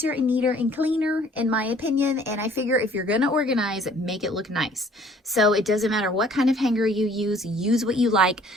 and neater and cleaner, in my opinion, and I figure if you're going to organize, make it look nice. So it doesn't matter what kind of hanger you use what you like.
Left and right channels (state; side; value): normal; both; correlation 0.56